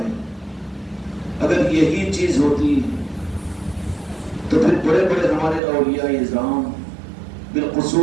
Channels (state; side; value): drops out; left; at 5.6 s